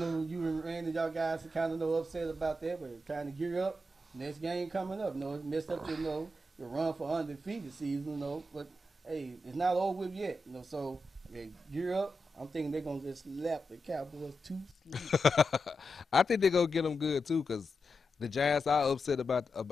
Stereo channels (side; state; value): both; normal; correlation 0.88